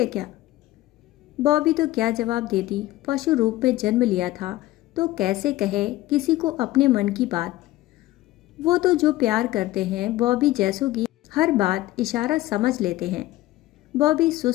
क्या? बॉबी तो क्या जवाब देती, पशु रूप में जन्म लिया था तो कैसे कहे किसी को अपने मन की बात। वो तो जो प्यार करते हैं बॉबी जैसों की हर बात इशारा समझ लेते हैं। बॉबी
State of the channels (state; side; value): quieter; right; 16.7 dB